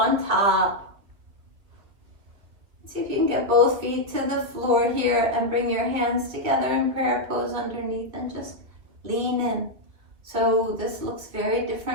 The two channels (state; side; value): late; left; 2.6 ms